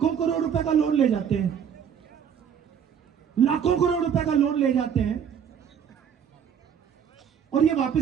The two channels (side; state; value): left; quieter; 8.0 dB